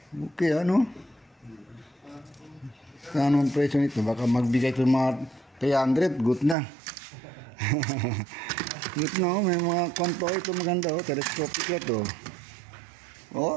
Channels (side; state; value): left; drops out; at 6.6 s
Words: Okay, Ano ang presyo nito? Baka magbigay ko mga 300, good na. Ito na, may mga kwanto ito maganda oh, telescopic ito.